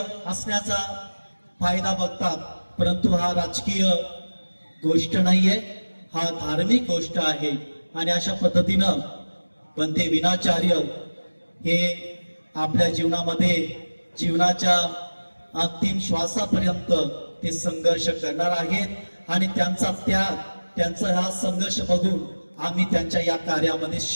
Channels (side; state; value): both; inverted; correlation -1.00